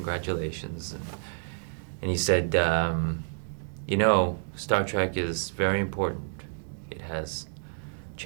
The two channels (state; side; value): silent; left; digital silence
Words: and he said, you know, Star Trek is very important. It has